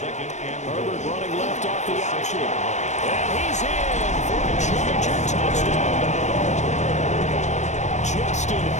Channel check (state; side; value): late; right; 0.34 ms